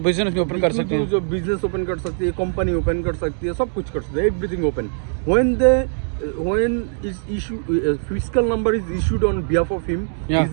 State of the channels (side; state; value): left; silent; digital silence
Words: बिजनेस भी ओपन कर सकते हैं, जो बिजनेस ओपन कर सकती है, कंपनी ओपन कर सकती है, सब कुछ कर सकते हैं, everything open. when is issue fiscal number is issued on behalf of him, Yeah.